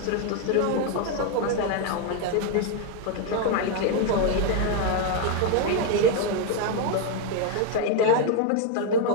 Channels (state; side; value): different; both; correlation 0.01